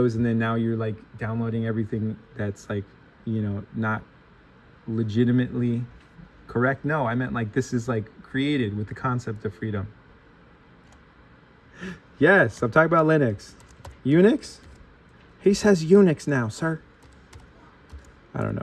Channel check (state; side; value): identical; both; correlation 1.00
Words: and then now you're like downloading everything that's like, not legitimately correct. No, I meant like this is like created with the concept of freedom. Yes, I'm talking about Linux. Unix? He says Unix now, sir. I don't